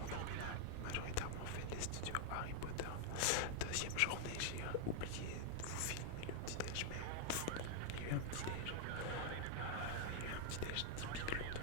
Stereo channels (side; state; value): both; different; correlation 0.00